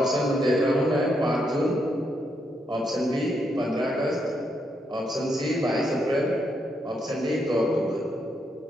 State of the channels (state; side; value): normal; both; correlation 0.79